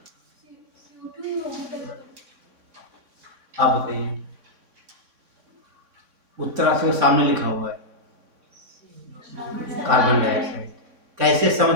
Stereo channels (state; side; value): late; left; 3.6 ms